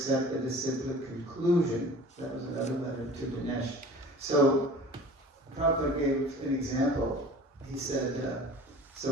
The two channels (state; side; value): normal; both; correlation 0.42